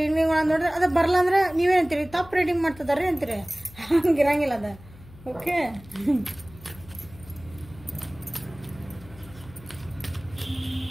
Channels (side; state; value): left; noise; hum, 20 dB below the sound